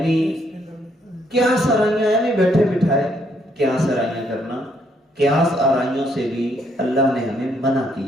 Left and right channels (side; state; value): both; normal; correlation 0.71